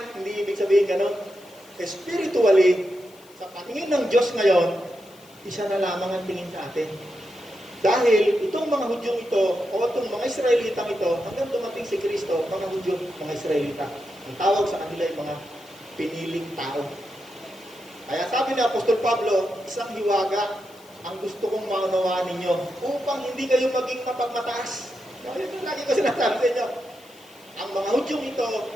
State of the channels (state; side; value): noise; left; hiss, 26 dB below the sound